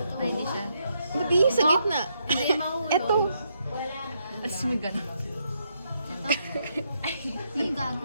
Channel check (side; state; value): both; inverted; correlation -0.77